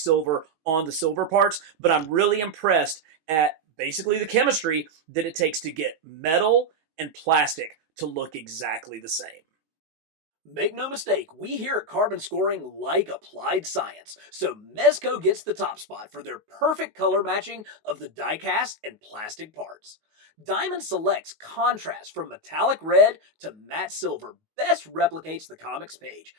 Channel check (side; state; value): left; late; 19 ms